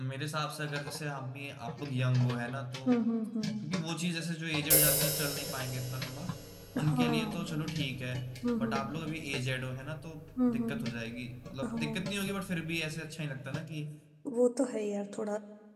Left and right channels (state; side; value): identical; both; correlation 1.00